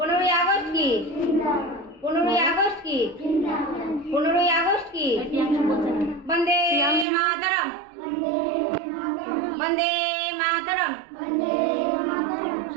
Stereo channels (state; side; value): drops out; left; at 7.1 s